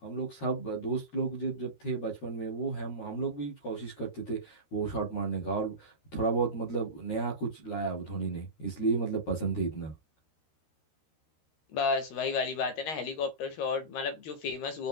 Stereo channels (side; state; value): right; late; 13 ms